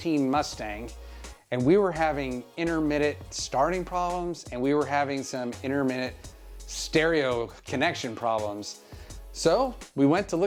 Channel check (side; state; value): both; identical; correlation 1.00